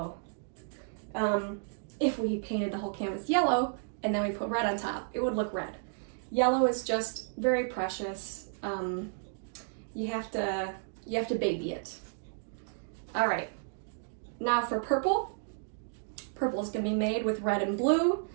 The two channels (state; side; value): silent; left; digital silence